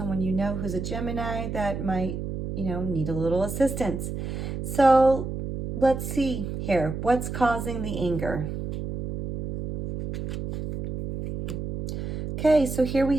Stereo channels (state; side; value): noise; right; hum, 5 dB below the sound